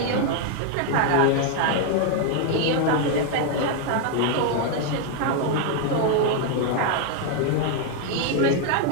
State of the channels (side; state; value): both; different; correlation 0.00